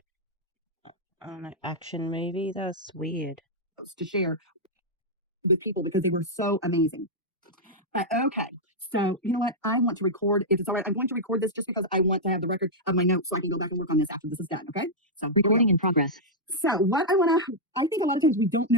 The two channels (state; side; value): normal; both; correlation -0.07